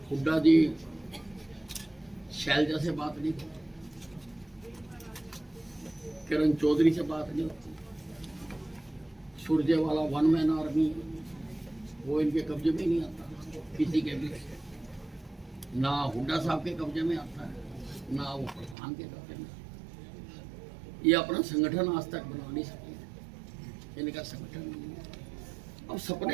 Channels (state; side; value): drops out; left; at 18.8 s